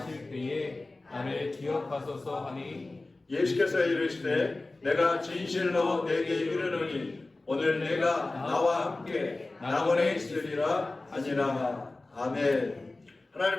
때에 나를 기억하소서 하니 예수께서 이르시되 내가 진실로 내게 이르노니 오늘 내가 나와 함께 낙원에 있으리라 하니라. 아멘.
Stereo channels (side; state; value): right; quieter; 3.1 dB